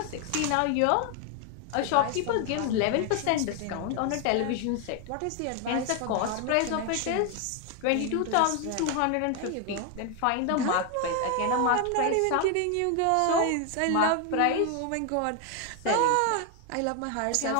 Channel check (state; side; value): different; both; correlation 0.01